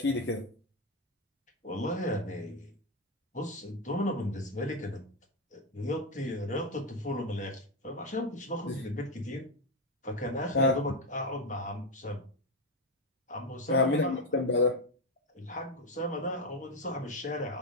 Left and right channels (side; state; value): both; normal; correlation 0.09